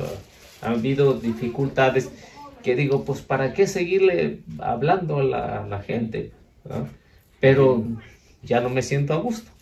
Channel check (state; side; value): identical; both; correlation 1.00